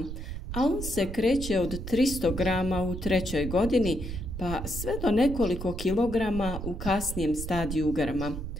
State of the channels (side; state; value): right; noise; rumble, 7 dB below the sound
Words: a on se kreće od 300 grama u 3. godini pa sve do nekoliko kilograma u kasnijem stadiju grma.